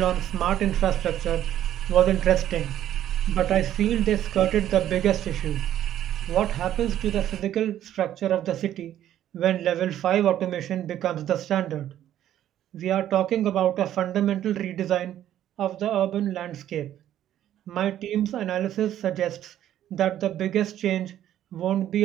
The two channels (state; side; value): quieter; left; 11.7 dB